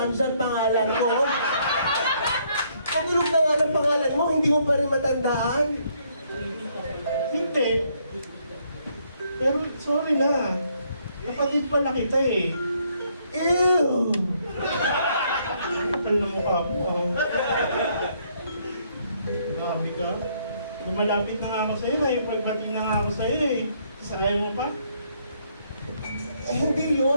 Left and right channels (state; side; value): inverted; both; correlation -0.70